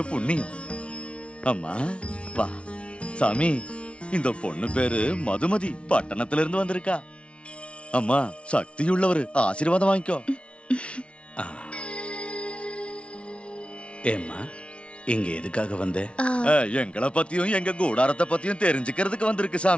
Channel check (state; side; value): late; right; 0.060 ms